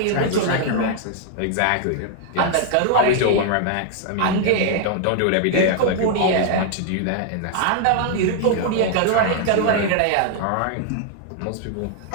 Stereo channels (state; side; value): different; both; correlation 0.00